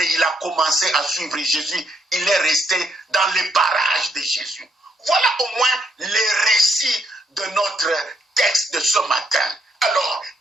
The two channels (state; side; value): normal; both; correlation 0.74